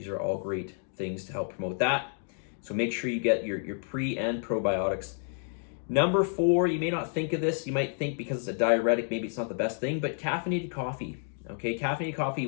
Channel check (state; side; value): silent; right; 58 dB below the other